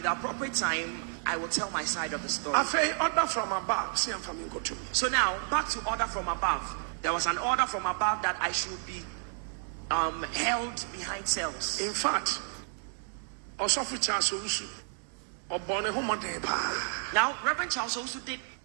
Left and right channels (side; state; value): left; silent; 57 dB below the other